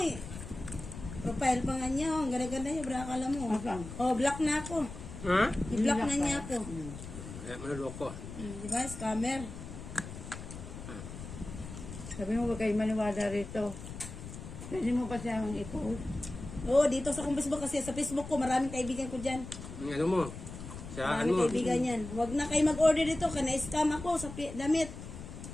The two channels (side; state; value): left; noise; rumble, 11 dB below the sound